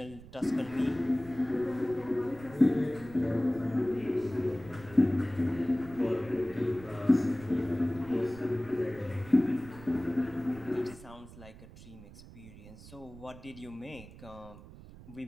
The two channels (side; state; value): right; noise; rumble, 18 dB below the sound